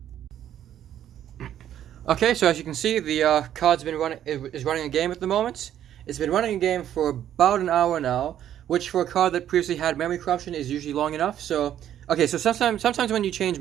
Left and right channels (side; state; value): left; quieter; 10.9 dB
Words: Okay, so as you can see, the card's is running a game at the moment. It's been running a game for about an hour now, which for a card that previously had memory corruption is usually long enough. So, okay, so sometimes when you change